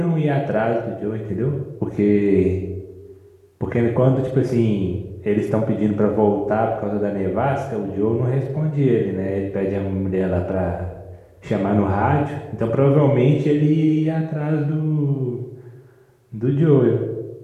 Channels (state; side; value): identical; both; correlation 1.00